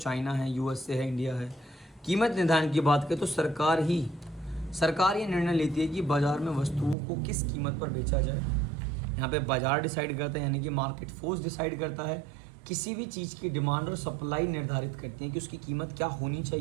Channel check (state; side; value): drops out; left; at 7.0 s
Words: है, यूएसए है, इंडिया है। कीमत निर्धारण की बात करें तो सरकार ये निर्णय लेती है कि बाज़ार में वस्तुओं को किस कीमत पर बेचा जाए। यहाँ पे बाज़ार डिसाइड करता है यानी कि मार्केट फोर्स डिसाइड करता है। किसी भी चीज़ की डिमांड और सप्लाई निर्धारित करती है कि उसकी कीमत क्या होनी